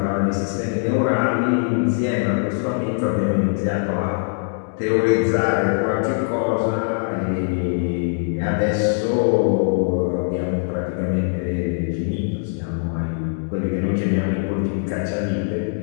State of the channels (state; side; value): silent; right; digital silence